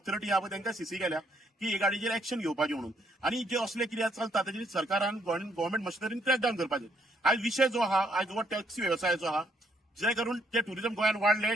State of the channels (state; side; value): normal; both; correlation 0.70